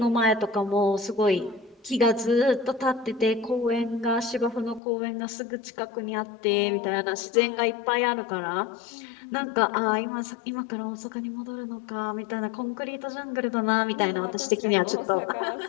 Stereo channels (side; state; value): right; drops out; at 4.8 s